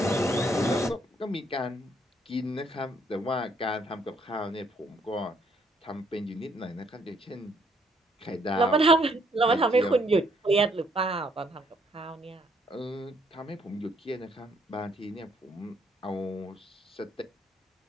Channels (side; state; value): both; normal; correlation 0.68